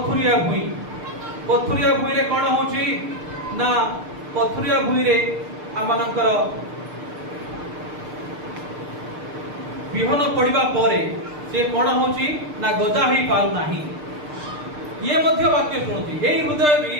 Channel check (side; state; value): left; late; 6.7 ms